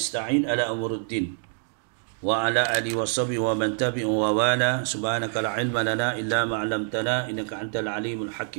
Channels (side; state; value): left; silent; 59 dB below the other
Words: على أمور الدين وعلى آله وصحبه ومن تبعه ووالاه سبحانك لا علم لنا إلا ما علمتنا إنك أنت العليم